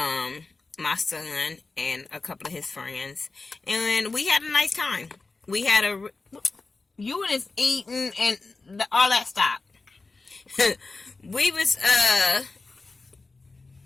my son, and a couple of his friends, and we had a nice time. We had you was eating and all that stuff. we had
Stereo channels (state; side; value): quieter; right; 3.7 dB